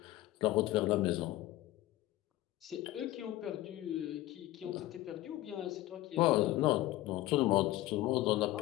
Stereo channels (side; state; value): right; quieter; 16.3 dB